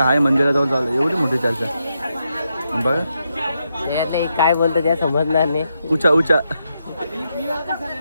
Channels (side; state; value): both; inverted; correlation -0.83